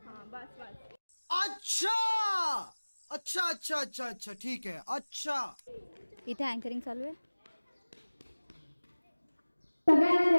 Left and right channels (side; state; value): both; inverted; correlation -1.00